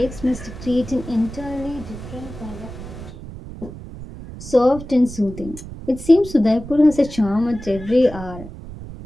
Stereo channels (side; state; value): right; noise; rumble, 13 dB below the sound